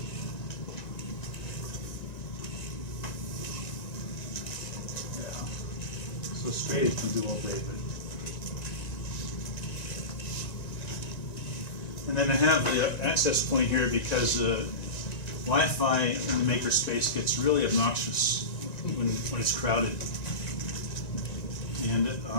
Yeah. So straight it can do all day, but. And then I have the access point here because Wi-Fi in the makerspace gets really obnoxious when it's crowded. And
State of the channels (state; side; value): late; right; 1.9 ms